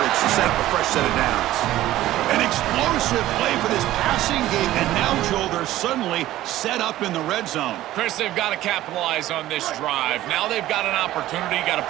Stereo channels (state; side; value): quieter; left; 14.8 dB